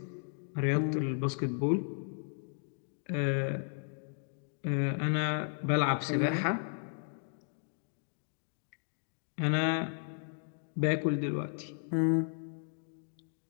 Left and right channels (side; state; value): right; silent; digital silence